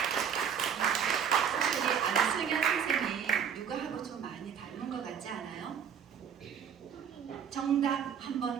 우리 안승현 선생님 누구하고 좀 많이 닮은 것 같지 않아요? 정답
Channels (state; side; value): quieter; left; 7.8 dB